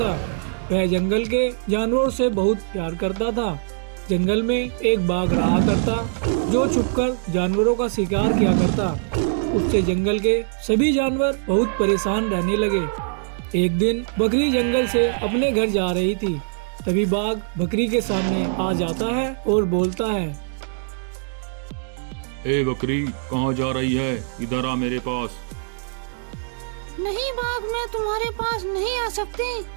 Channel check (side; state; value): left; silent; digital silence